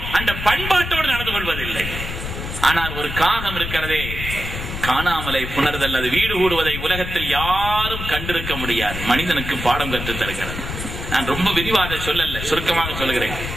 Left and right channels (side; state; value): left; noise; rumble, 6 dB below the sound